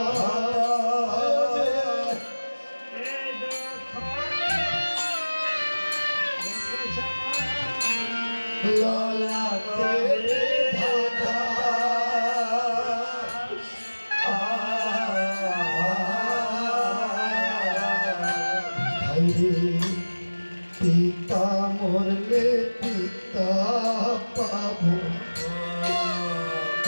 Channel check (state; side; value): inverted; both; correlation -1.00